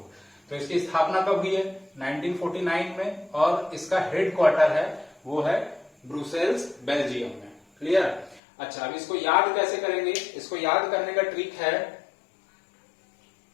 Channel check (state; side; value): drops out; right; at 8.4 s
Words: तो इसकी स्थापना कब हुई है, 1949 में, और इसका हेडक्वार्टर है वो है ब्रुसेल्स, बेल्जियम में। क्लियर। अच्छा, अब इसको याद कैसे करेंगे, इसको याद करने का ट्रिक है,